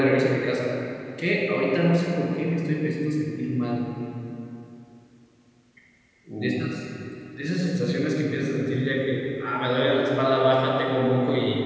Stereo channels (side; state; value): both; identical; correlation 1.00